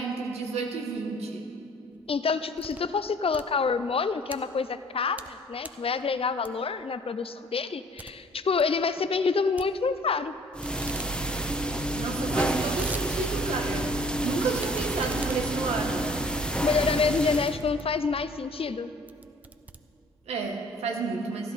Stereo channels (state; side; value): normal; both; correlation 0.53